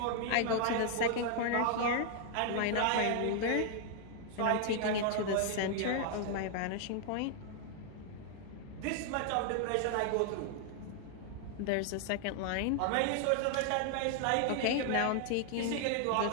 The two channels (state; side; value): different; both; correlation 0.00